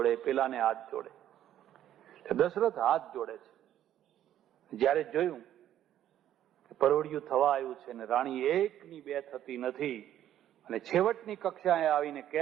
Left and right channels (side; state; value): left; quieter; 11.6 dB